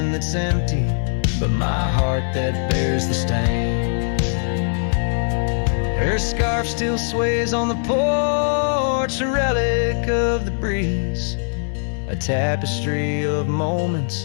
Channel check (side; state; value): right; silent; digital silence